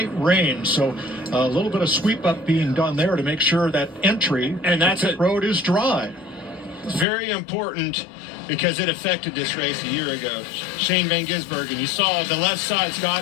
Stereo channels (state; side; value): drops out; right; at 7.1 s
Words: rain. So a little bit of sweep up being done there to make sure that entry and that's to pit road is dry. It's very important because it affected this race a year ago. Shane Van Gisbergen, you saw the left side, Scott,